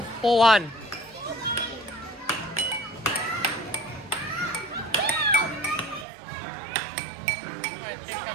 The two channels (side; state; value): left; drops out; at 6.1 s